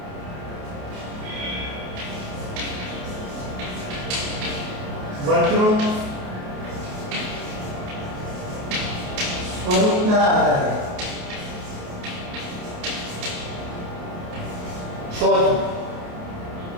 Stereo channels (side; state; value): left; late; 28 ms